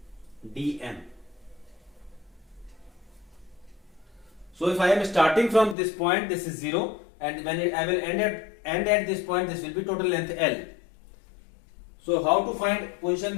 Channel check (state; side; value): drops out; right; at 5.8 s